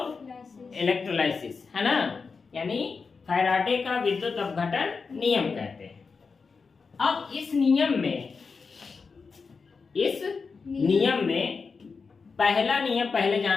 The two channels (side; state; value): right; quieter; 4.9 dB